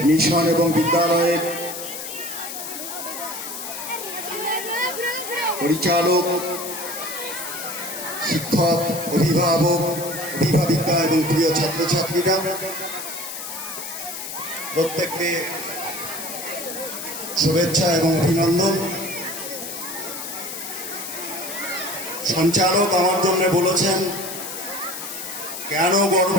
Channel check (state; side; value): noise; left; hiss, 8 dB below the sound